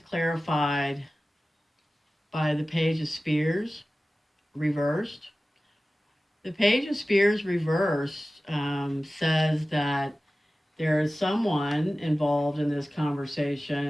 by the Page of Spears reversed. The Page of Spears reversed says that there is someone involved in this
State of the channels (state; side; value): normal; both; correlation 0.96